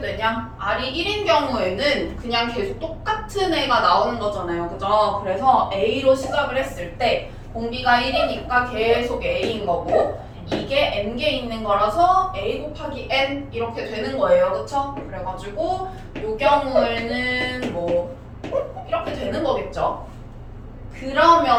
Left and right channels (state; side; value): identical; both; correlation 1.00